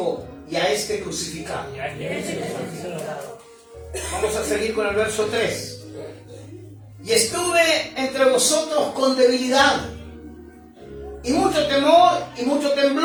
y a este crucificado. Vamos a seguir con el verso 3. Y estuve entre vosotros con debilidad, y mucho temor, y mucho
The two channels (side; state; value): both; identical; correlation 1.00